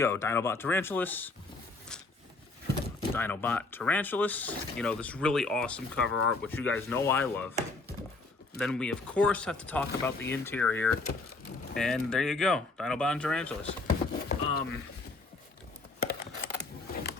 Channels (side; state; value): right; quieter; 3.5 dB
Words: Dinobot Tarantulas, Dinobot Tarantulas. You know, this really awesome cover art, which you guys know I love. Then we, of course, have to talk about the interior. And there you go, Dinobot and Tarantulas.